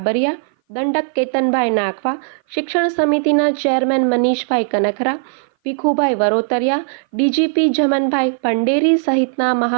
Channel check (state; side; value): silent; left; 58 dB below the other